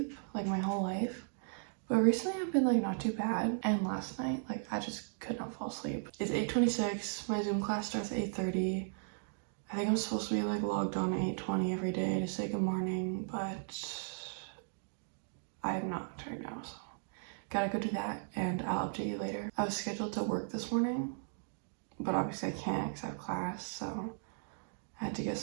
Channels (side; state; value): left; silent; digital silence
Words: like my whole life. But recently I've been like not too bad. And last night, like, I just could not fall asleep. It's 8:26. My Zoom class starts at 8:30. I think I'm supposed to be like logged on at 8:20 every day to say good morning, but I am not right now, so gotta go do that and I'll update you later. I was scheduled to work this morning, but obviously I can't because I have class, so I had to get